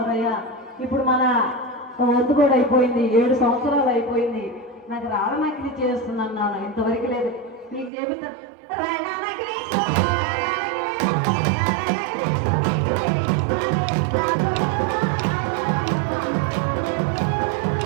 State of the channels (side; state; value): left; drops out; at 7.9 s